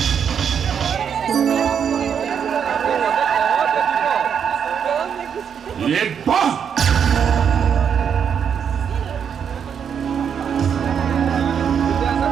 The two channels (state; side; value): quieter; left; 7.6 dB